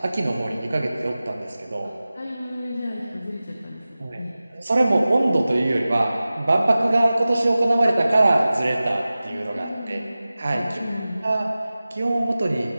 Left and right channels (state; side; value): inverted; both; correlation -0.96